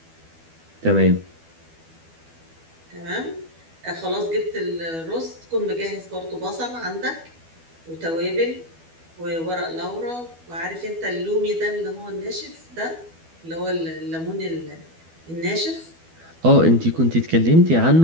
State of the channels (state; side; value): late; left; 12 ms